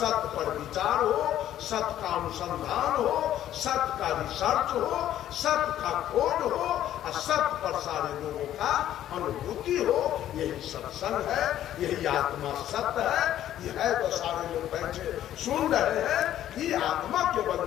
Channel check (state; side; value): quieter; right; 12.0 dB